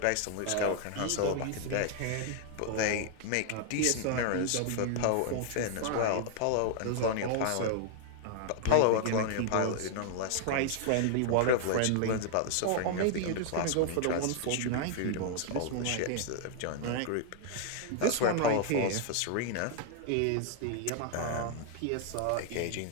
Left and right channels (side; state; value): both; different; correlation 0.00